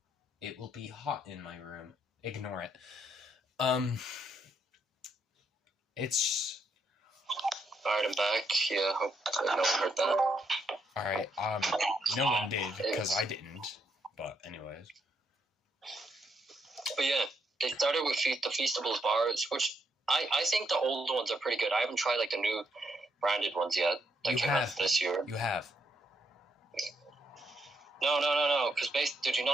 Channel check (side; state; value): both; normal; correlation 0.76